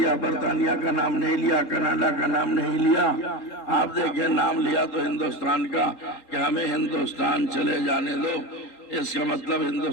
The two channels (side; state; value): right; late; 4.0 ms